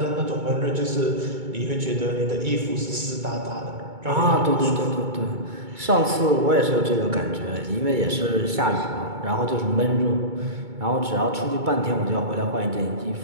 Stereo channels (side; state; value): left; late; 2.2 ms